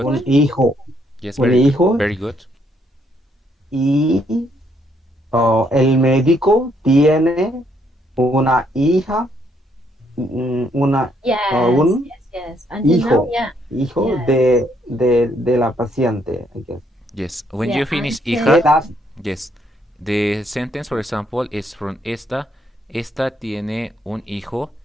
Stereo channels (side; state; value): both; normal; correlation 0.71